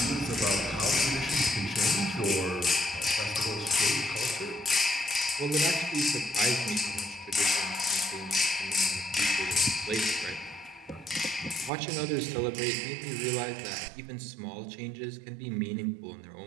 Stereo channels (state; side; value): drops out; left; at 11.7 s